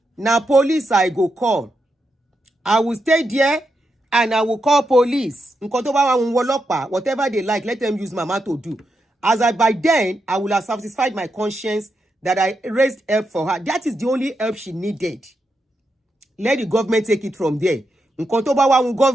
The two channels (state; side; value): normal; both; correlation 0.85